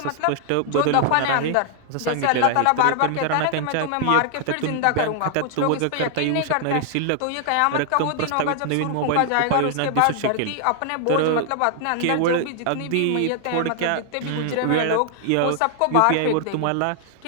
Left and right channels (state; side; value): different; both; correlation 0.00